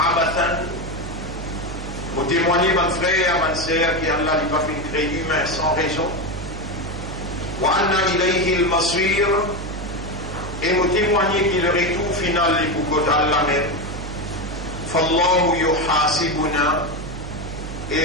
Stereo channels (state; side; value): noise; right; hum, 9 dB below the sound